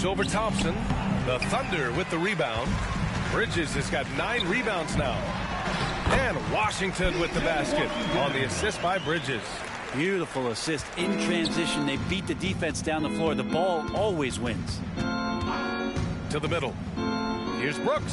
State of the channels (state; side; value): identical; both; correlation 1.00